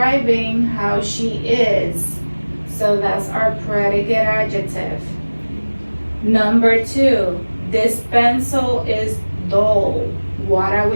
how she is. So that's our predicate adjective. Number 2, this pencil is dull. What are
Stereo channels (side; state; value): both; inverted; correlation -1.00